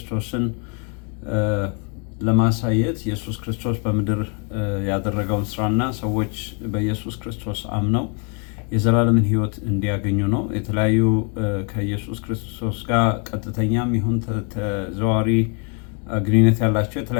ለማሳየት ኢየሱስ ክርስቶስ በምድር ያደረገውን ስራና ሰዎች በኢየሱስ ክርስቶስ አምነው የዘላለምን ህይወት እንዲያገኙ ነው። የተለያዩ ከኢየሱስ ክርስቶስ ጋር ቀጥተኛም ይሁን ተዘዋዋሪ ግንኙነት ያላቸው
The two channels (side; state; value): right; quieter; 38.3 dB